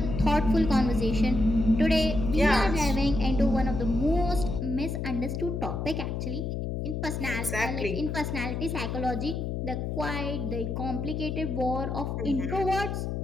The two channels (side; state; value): left; noise; hum, 3 dB below the sound